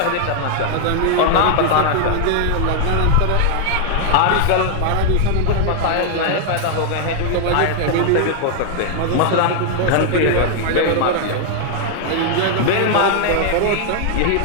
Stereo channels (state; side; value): different; both; correlation 0.00